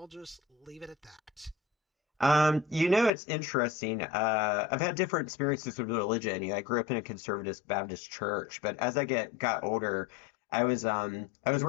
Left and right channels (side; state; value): right; drops out; at 3.1 s